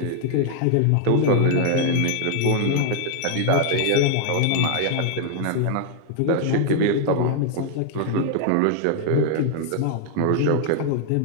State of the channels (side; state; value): both; different; correlation 0.00